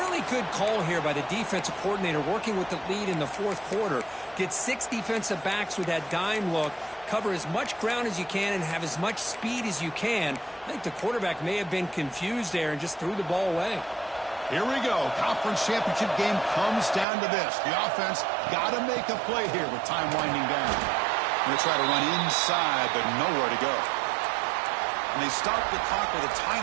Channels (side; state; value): left; drops out; at 17.1 s